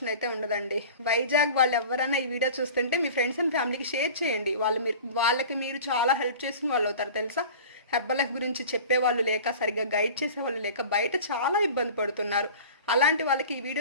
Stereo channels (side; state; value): both; inverted; correlation -0.39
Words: అయితే ఉండదండి. వైజాగ్ వాళ్ళు ఎవరైనా ఈ వీడియో చూస్తుంటే మీ ఫ్రెండ్స్ అండ్ ఫ్యామిలీకి షేర్ చేయండి. వాళ్ళకి మీరు చాలా హెల్ప్ చేసిన వాళ్ళు అవుతారు తెలుసా. హెర్బల్ లైఫ్ గురించి చెప్పేవాళ్ళు లేక, సరిగ్గా గైడ్ చేసేవాళ్ళు లేక బయట చాలా ఇబ్బంది పడుతున్నారు. అలాంటి వాళ్ళకి ఈ